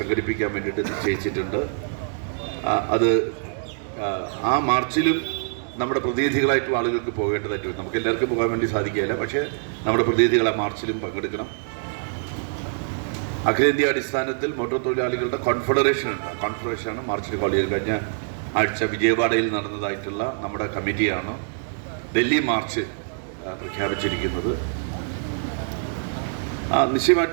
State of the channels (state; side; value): silent; left; digital silence